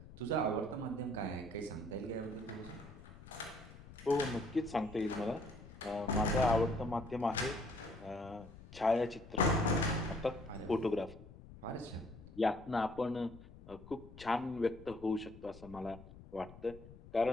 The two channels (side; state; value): left; noise; rumble, 17 dB below the sound